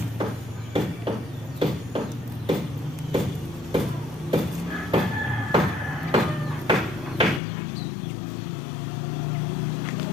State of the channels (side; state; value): right; drops out; at 7.4 s